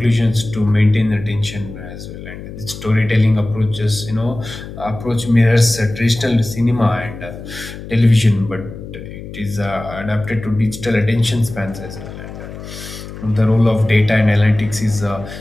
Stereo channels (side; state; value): left; noise; hum, 12 dB below the sound